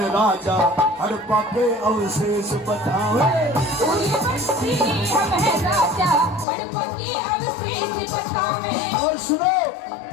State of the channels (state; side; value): drops out; right; at 6.5 s